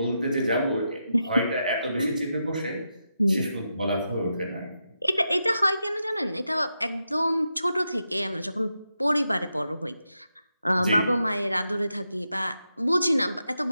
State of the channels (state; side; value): inverted; both; correlation -0.87